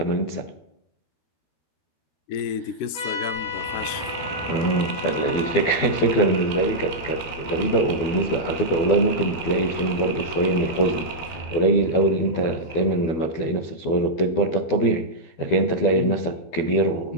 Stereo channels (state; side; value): late; right; 12 ms